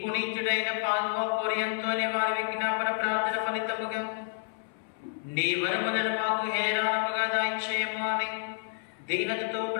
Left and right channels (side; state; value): right; silent; 58 dB below the other